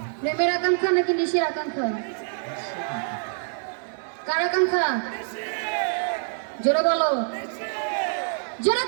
প্রেমের আকাঙ্ক্ষা নাকি নিশের আকাঙ্ক্ষা? কার আকাঙ্ক্ষা? জোরে বলো, জোরে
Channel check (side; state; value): left; silent; 61 dB below the other